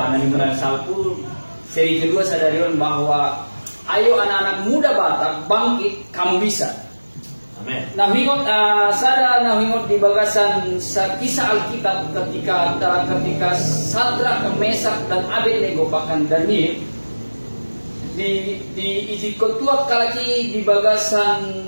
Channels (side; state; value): both; inverted; correlation -1.00